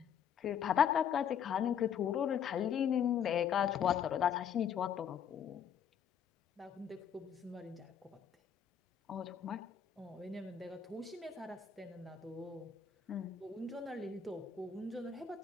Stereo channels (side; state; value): right; quieter; 8.1 dB